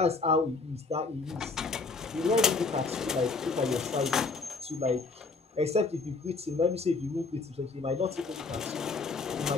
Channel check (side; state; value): right; quieter; 4.1 dB